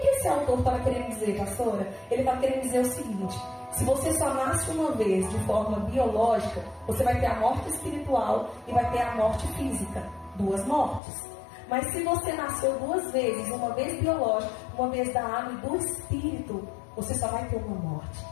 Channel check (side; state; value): right; drops out; at 11.0 s